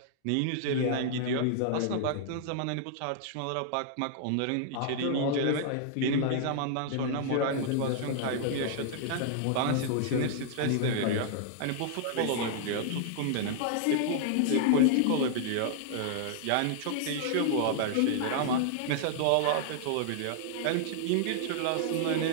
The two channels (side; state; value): both; different; correlation -0.01